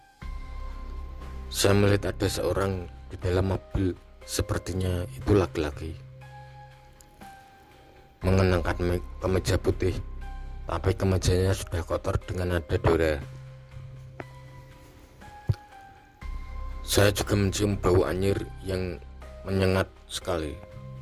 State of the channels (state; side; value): identical; both; correlation 1.00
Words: saya melihat ada seorang di dalam mobil. Sepertinya itu laki-laki, mengenakan kemeja putih, tapi kemejanya sudah kotor dengan ada noda. Saya juga mencium bau anyir yang menyengat sekali.